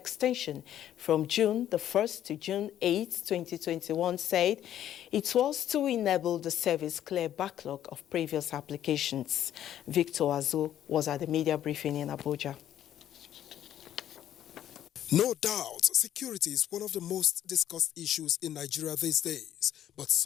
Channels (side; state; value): right; quieter; 11.4 dB